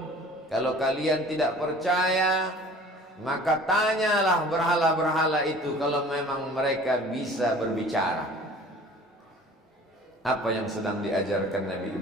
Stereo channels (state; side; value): normal; both; correlation 0.47